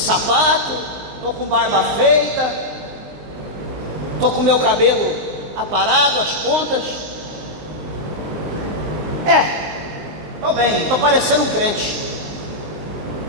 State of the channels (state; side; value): late; left; 19 ms